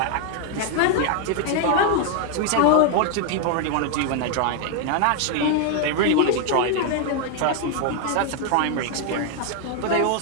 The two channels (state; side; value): different; both; correlation 0.00